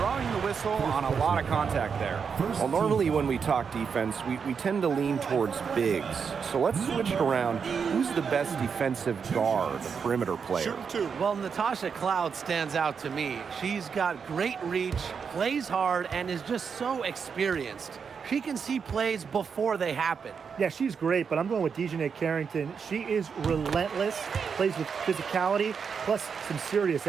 the whistle on a lot of contact there. Well, normally when we talk defense, we tend to lean towards bigs. So let's switch it around. Who's the best defensive guard, the perimeter player? Well, Natasha Cloud stands out to me. She's got great reach, plays hard, and is just so experienced. She can see plays before they happen. Yeah, she's great, but I'm going with Dejanay Carrington. She is relentless, plays with physicality, plus some serious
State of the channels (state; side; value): quieter; left; 6.2 dB